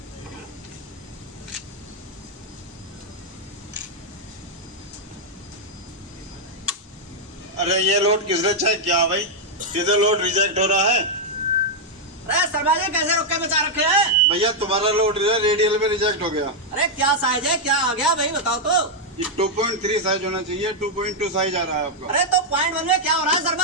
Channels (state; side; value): normal; both; correlation -0.02